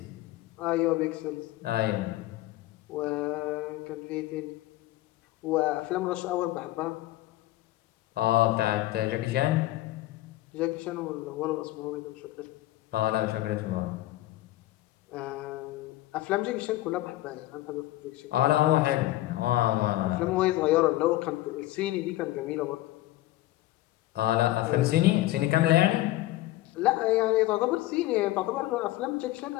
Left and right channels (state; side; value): quieter; right; 16.4 dB